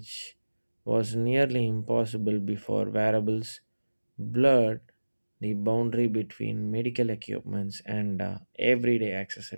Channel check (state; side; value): inverted; both; correlation -1.00